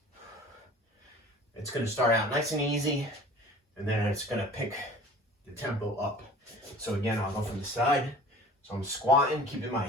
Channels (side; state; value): both; normal; correlation 0.45